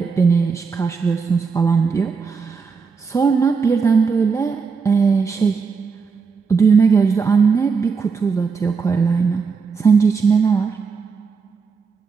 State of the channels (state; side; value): quieter; left; 5.3 dB